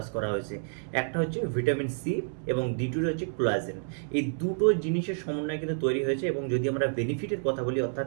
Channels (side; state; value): left; silent; 58 dB below the other